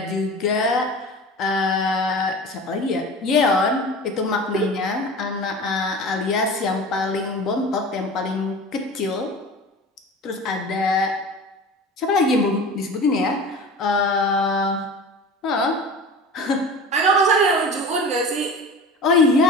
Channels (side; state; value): both; normal; correlation 0.35